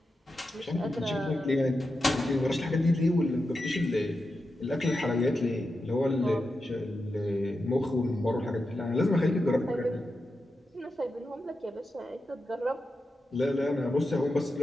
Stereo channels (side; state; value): both; normal; correlation 0.89